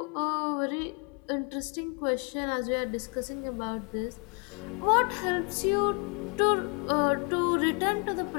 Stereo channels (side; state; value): right; quieter; 35.6 dB